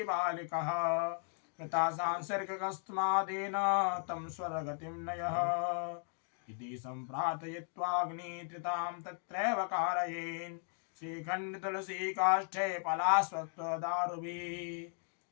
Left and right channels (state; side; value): silent; right; 53 dB below the other